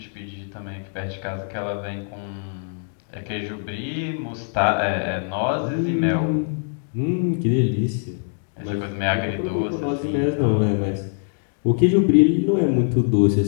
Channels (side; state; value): right; silent; 63 dB below the other